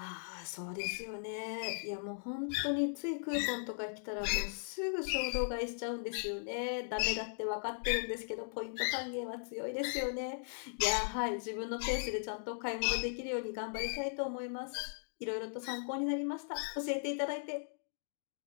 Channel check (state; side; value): silent; right; digital silence